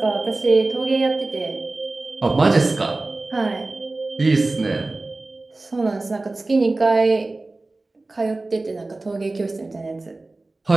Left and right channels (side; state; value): left; quieter; 3.1 dB